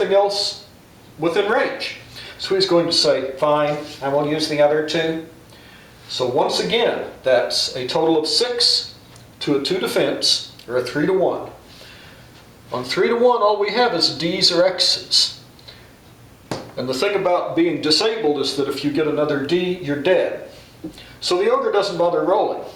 else within range. So he's going to say, fine, I will use the other 2. So once again, that's a total of 6 to a 2 defense, or a 3 to 1. On 3 to 1, all we have is D's or X's. And the thing about being disabled is that if you get another D, you're dead. So the ogre doesn't bother rolling.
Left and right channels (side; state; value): both; identical; correlation 1.00